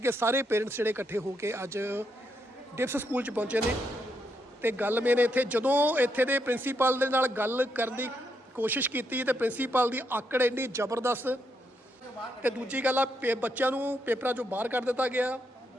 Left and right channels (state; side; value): normal; both; correlation 0.79